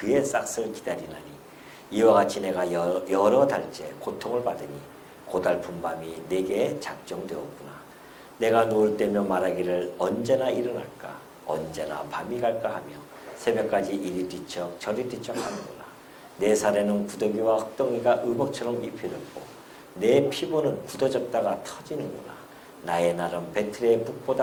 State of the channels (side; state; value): both; identical; correlation 1.00